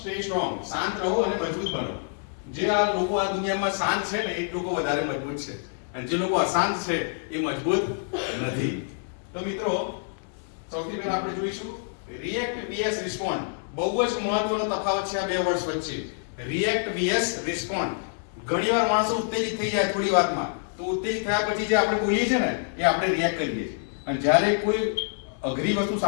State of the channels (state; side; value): silent; right; digital silence